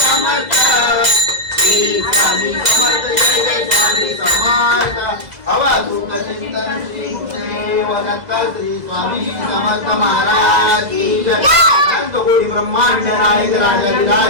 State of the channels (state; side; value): late; left; 2.0 ms